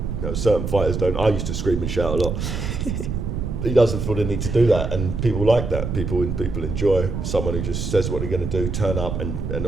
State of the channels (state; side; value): noise; right; rumble, 3 dB below the sound